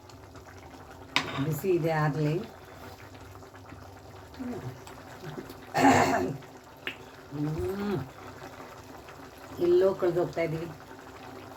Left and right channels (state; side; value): identical; both; correlation 1.00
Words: ಬಿಸಿ ಇದೆ ಆಗಲಿ. ಎಲ್ಲೋ ಕಳೆದೋಗ್ತಾ ಇದ್ದೀವಿ.